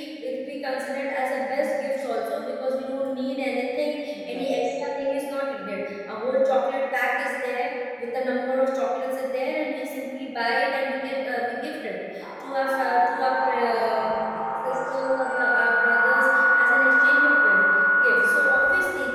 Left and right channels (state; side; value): identical; both; correlation 1.00